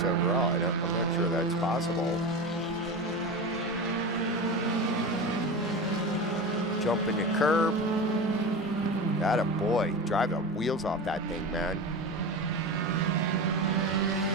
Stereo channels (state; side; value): normal; both; correlation 0.25